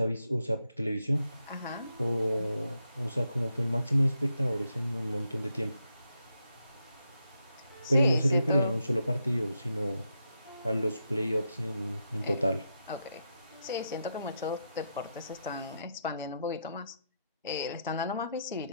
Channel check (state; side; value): inverted; both; correlation -0.82